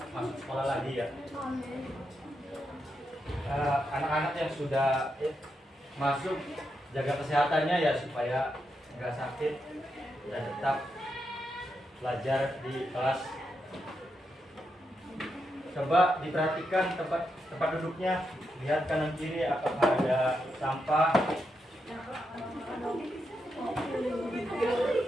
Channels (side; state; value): both; normal; correlation 0.84